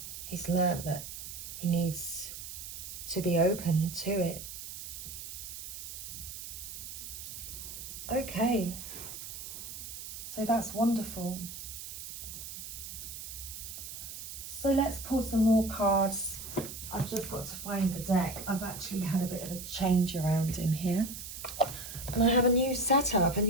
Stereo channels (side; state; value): right; noise; hiss, 9 dB below the sound